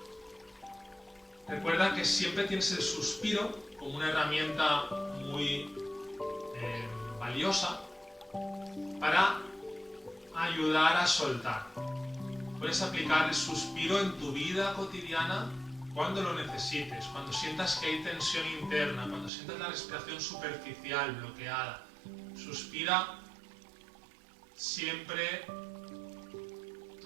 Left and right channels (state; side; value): drops out; left; at 19.3 s